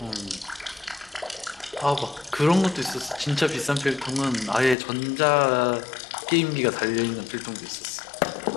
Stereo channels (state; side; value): drops out; right; at 4.8 s